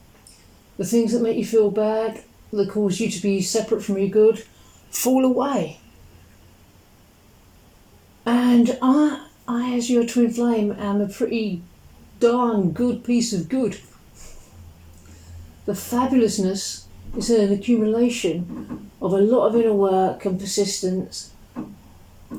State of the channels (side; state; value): both; identical; correlation 1.00